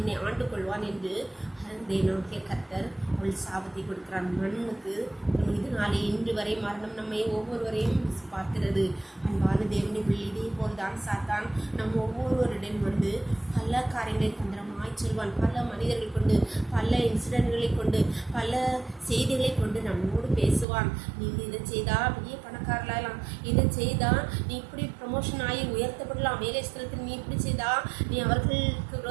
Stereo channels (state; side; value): drops out; left; at 20.7 s